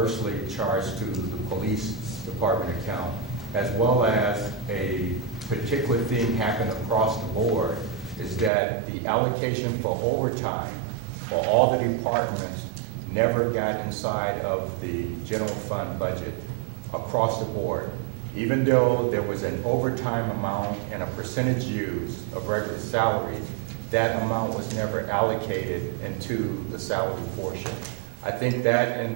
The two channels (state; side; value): drops out; left; at 8.5 s